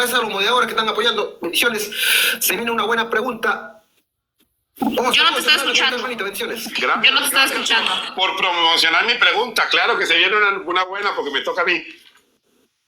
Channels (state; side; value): identical; both; correlation 1.00